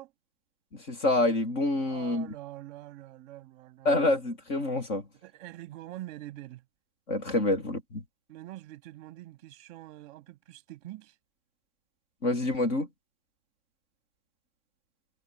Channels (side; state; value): right; late; 3.6 ms